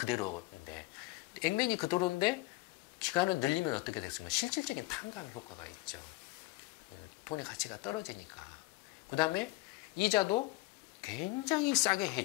액면이 그대로인데 기간을 늘리면 어떻게 됐습니까? 실질적인 탕감 효과가 있죠. 돈의 가치가 떨어지니까. 그 다음에 이자도 굉장히 싸게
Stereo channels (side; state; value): right; quieter; 21.5 dB